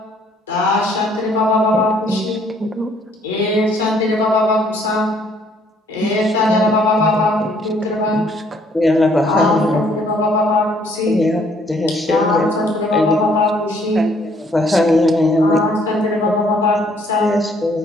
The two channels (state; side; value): normal; both; correlation 0.64